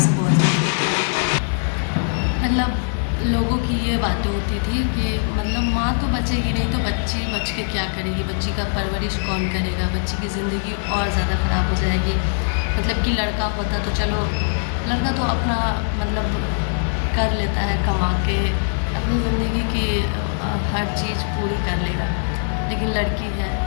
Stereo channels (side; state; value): right; silent; digital silence